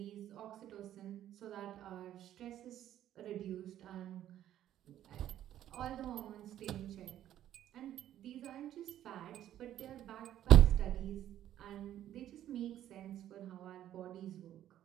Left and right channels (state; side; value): quieter; left; 11.9 dB